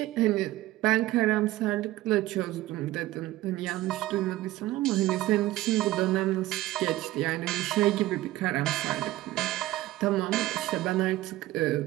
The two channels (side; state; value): left; quieter; 16.5 dB